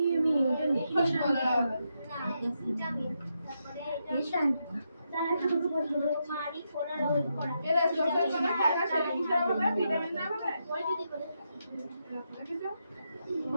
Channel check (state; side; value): inverted; both; correlation -0.83